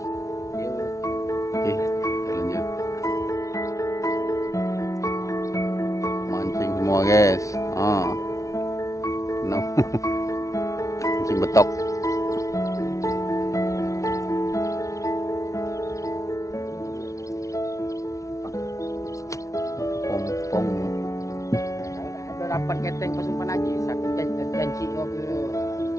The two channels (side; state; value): right; late; 0.15 ms